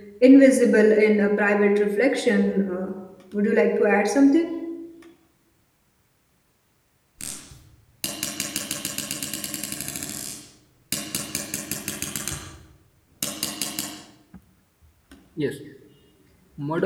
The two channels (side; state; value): both; identical; correlation 1.00